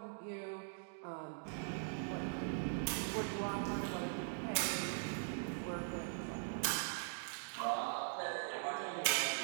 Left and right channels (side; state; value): left; silent; digital silence